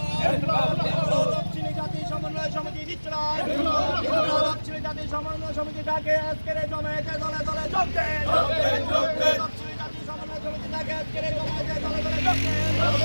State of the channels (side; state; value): both; inverted; correlation -1.00